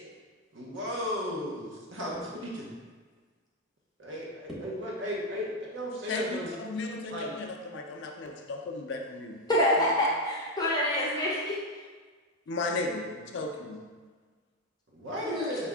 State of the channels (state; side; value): normal; both; correlation 0.06